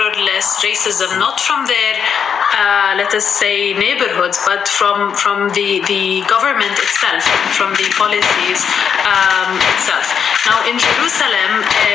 less racism, not from their, let us say, neighborhoods, but from the government itself, from the policies itself. Now, in Jerusalem,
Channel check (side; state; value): right; quieter; 7.3 dB